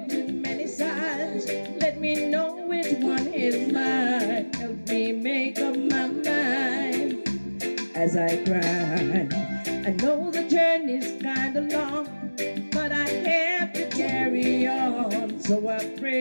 As I cry, I know the journey's kinda long, but I have to carry on. So I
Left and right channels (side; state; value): both; inverted; correlation -1.00